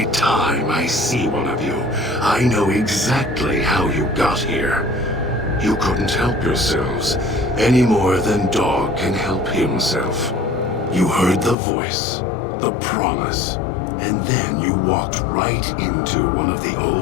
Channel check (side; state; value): right; drops out; at 11.6 s